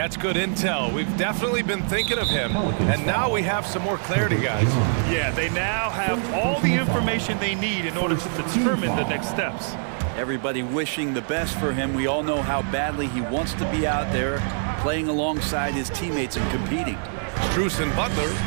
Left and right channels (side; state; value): left; silent; digital silence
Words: good intel. We've definitely been thinking of him, and now we have some more clarity, guys. Yeah, they now have all the information they need in order to determine the next steps. Everybody wishing the best for him. We all know how badly he wants to be out there, playing alongside his teammates and competing. Strus and Butler